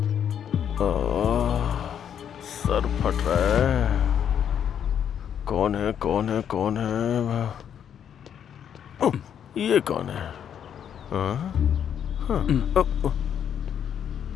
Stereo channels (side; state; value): right; quieter; 8.8 dB